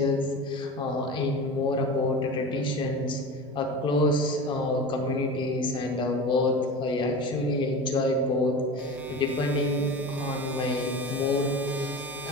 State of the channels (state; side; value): normal; both; correlation 0.31